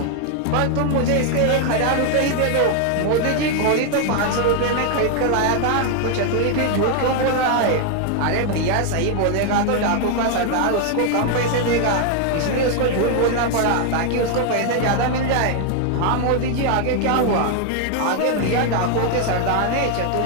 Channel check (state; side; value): different; both; correlation 0.00